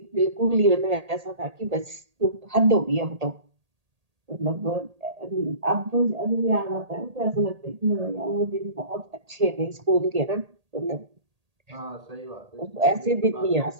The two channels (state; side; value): late; left; 1.8 ms